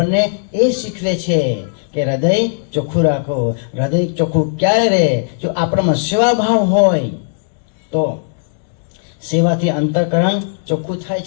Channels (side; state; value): right; silent; digital silence